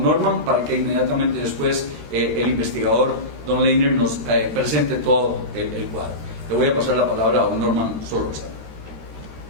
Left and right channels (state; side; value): late; left; 13 ms